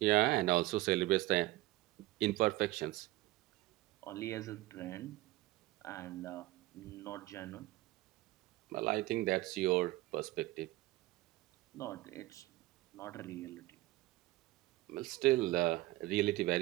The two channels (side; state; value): left; quieter; 18.1 dB